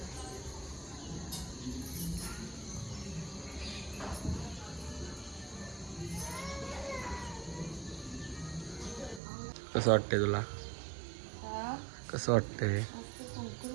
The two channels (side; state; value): left; drops out; at 9.2 s